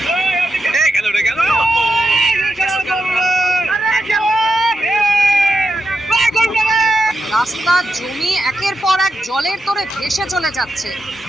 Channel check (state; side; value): normal; both; correlation 0.86